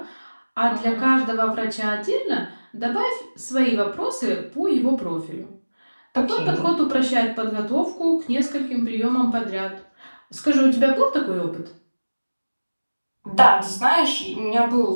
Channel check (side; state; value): both; inverted; correlation -1.00